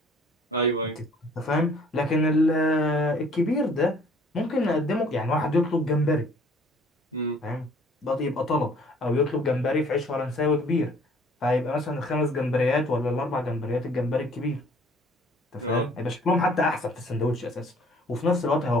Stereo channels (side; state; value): both; normal; correlation 0.56